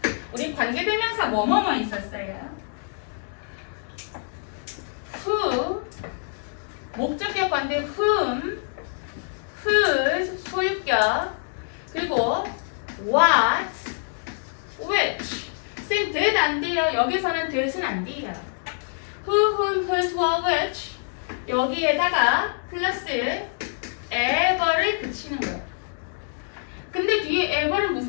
우리 관계대명사 뭐뭐뭐 있었어요. who 목적격 관대 whom whose 소유격 그리고 what which 쌤 that 안 돼요. 여기서는 that은 안 돼요. who whom whose what which 여기에다가 플러스 ever를 붙이는 거예요. 근데 뒤에 ever는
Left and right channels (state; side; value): silent; right; digital silence